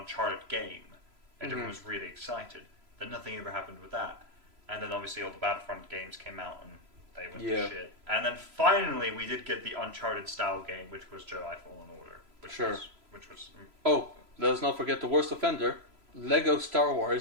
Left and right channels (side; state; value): left; late; 3.0 ms